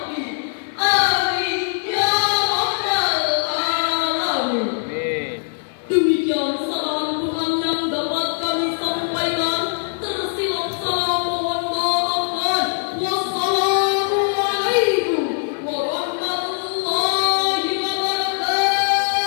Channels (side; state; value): right; silent; digital silence